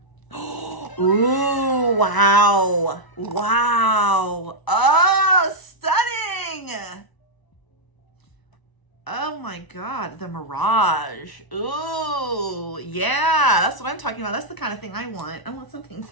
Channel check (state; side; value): late; right; 1.0 ms